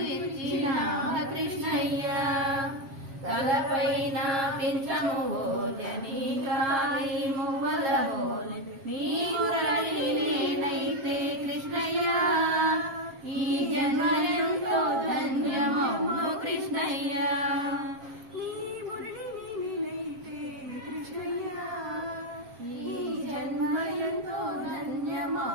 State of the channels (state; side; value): late; left; 7.4 ms